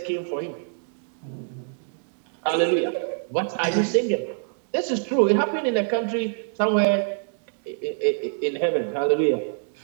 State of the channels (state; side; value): silent; left; digital silence